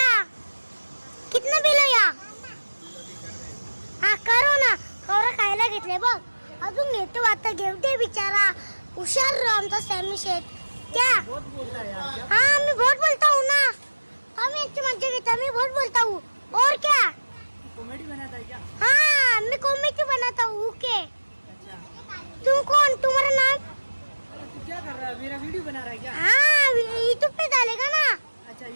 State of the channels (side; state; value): both; inverted; correlation -1.00